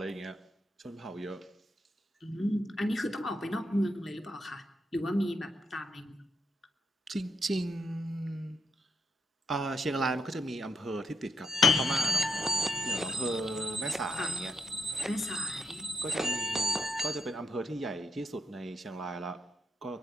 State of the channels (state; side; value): normal; both; correlation 0.79